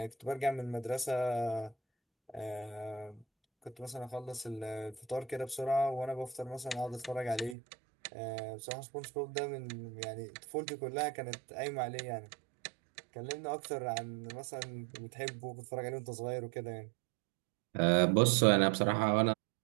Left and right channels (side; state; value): left; drops out; at 7.6 s